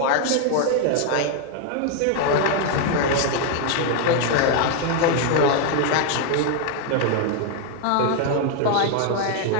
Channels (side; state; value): both; different; correlation 0.00